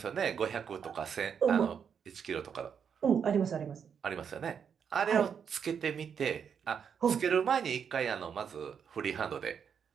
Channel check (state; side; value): quieter; left; 7.3 dB